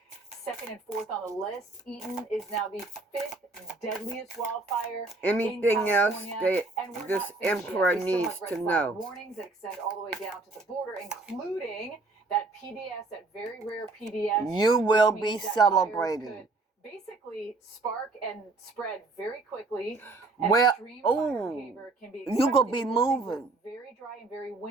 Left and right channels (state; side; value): quieter; left; 3.4 dB